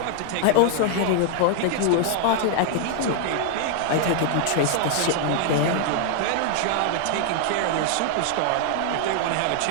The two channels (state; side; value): different; both; correlation 0.00